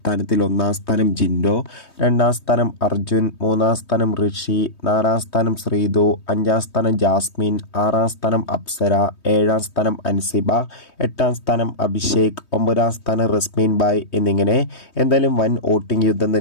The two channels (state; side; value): late; right; 3.2 ms